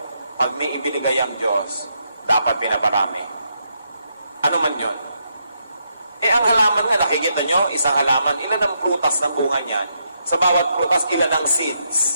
pag may ibinigay ang Diyos, dapat pinaparami. Ano man yun? Ang halaman nga, nakikita nyo, isang halaman, ilan ang prutas ng bunga niyan? Sa bawat prutas, ilan ang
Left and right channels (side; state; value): both; inverted; correlation -0.79